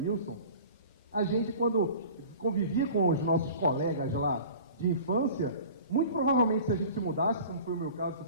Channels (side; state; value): both; inverted; correlation -0.42